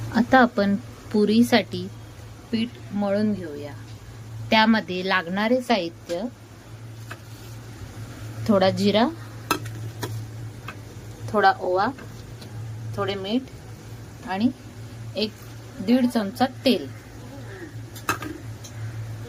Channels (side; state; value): both; identical; correlation 1.00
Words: आता आपण पुरीसाठी पीठ मळून घेऊया। त्यामध्ये लागणारे साहित्य थोडा जिरा, थोडा ओवा, थोडे मीठ आणि 1-1.5 चमचा तेल।